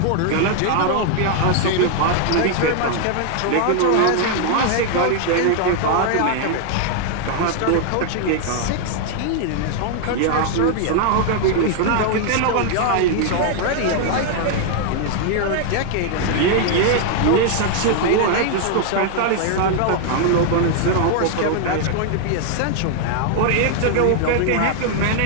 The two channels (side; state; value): both; different; correlation 0.00